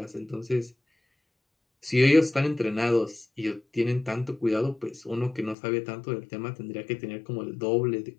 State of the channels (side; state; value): right; drops out; at 5.6 s